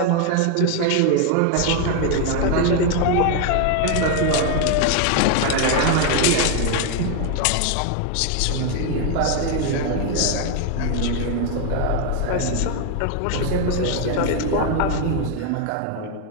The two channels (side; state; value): both; different; correlation 0.01